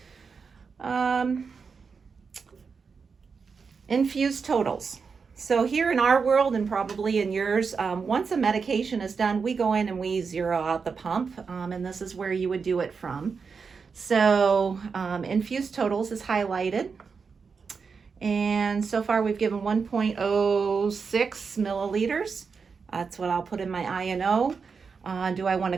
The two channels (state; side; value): quieter; left; 5.4 dB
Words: Infused totals. So here in our world and probably in yours, once a medication is done, we go in and we zero out the pump, and this is where you would do it from. So infused totals is highlighted, and so far we've given 1.06 milliliters. That's what I'll put in my INO. Do I want